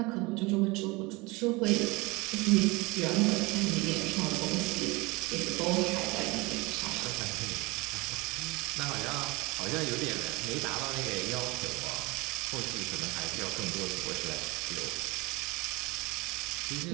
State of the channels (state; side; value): quieter; left; 24.3 dB